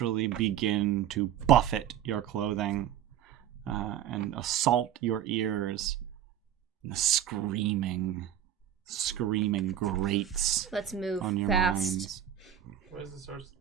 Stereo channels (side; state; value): left; quieter; 10.4 dB